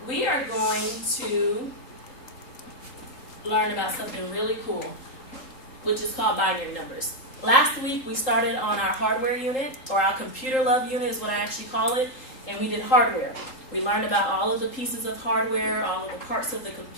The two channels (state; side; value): late; right; 3.8 ms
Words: we are going to learn about something really cool, which is called binary numbers. Last week, we started on our hardware unit, or our computer love unit is what I actually call it, and we did hardware. We learned about all of the pieces of hardware, all of the parts of the